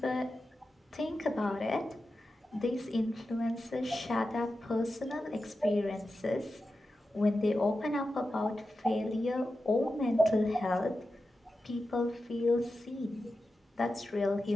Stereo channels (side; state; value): both; normal; correlation 0.91